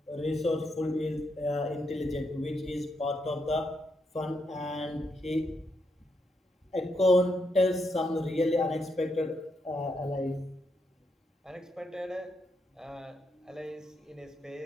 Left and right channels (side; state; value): both; normal; correlation 0.80